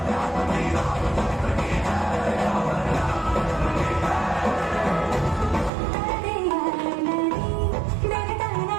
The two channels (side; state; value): left; drops out; at 5.7 s